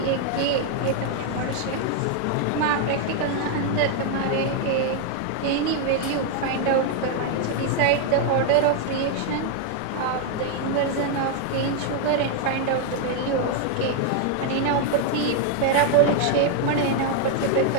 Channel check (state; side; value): different; both; correlation 0.00